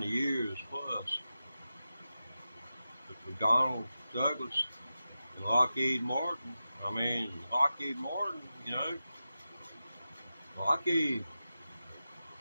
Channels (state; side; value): inverted; both; correlation -0.92